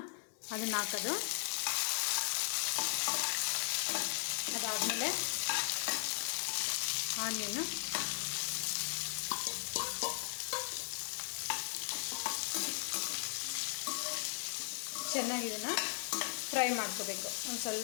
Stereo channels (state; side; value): silent; right; digital silence